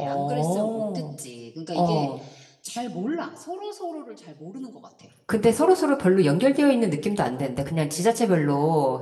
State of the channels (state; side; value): identical; both; correlation 1.00